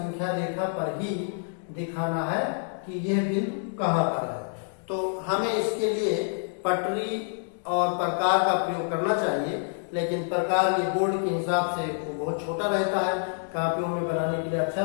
रेखा पर ही दिखाना है कि यह बिंदु कहाँ पर है। तो हमें इसके लिए पटरी और प्रकार का प्रयोग करना चाहिए, लेकिन प्रकार ये बोर्ड के हिसाब से वो बहुत छोटा रहता है, कापियों में बनाने के लिए अच्छा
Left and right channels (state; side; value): silent; right; digital silence